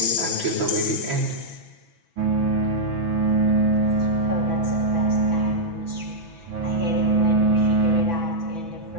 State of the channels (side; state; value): left; late; 6.1 ms